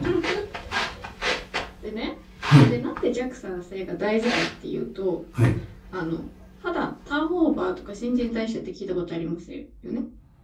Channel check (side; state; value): both; identical; correlation 1.00